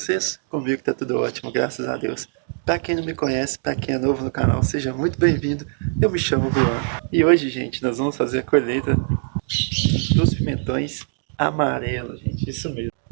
Comigo tá tudo ótimo, graças a Deus. Para quem não me conhece, para quem é novo no canal, seja muito bem-vindo. Eu me chamo Juan. E hoje, gente, nós vamos fazer a colheita dos pimentões amarelos, gente, isso mesmo.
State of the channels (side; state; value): left; silent; 63 dB below the other